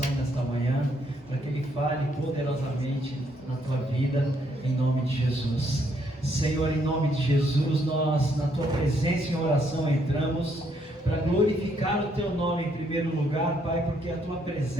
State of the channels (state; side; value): normal; both; correlation 0.72